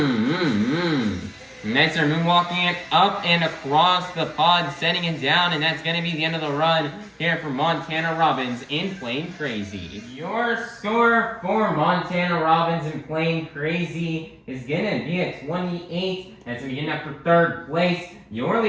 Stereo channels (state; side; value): identical; both; correlation 1.00